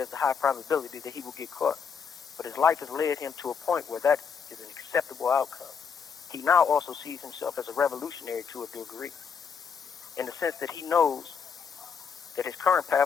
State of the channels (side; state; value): right; quieter; 6.5 dB